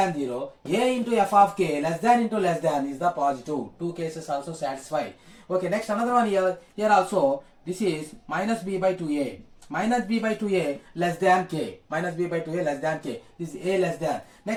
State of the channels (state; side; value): identical; both; correlation 1.00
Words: 0, a into f of k less than into less than is the positive. Two cases also satisfy. Okay, next another one here also, this is minus b by 2a. Minus b by 2a less than k. Minus b by 2a less than k. This is a less than.